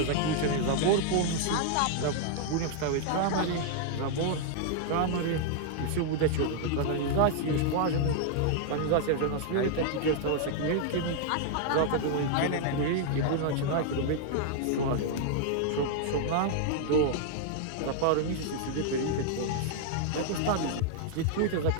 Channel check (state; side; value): different; both; correlation 0.00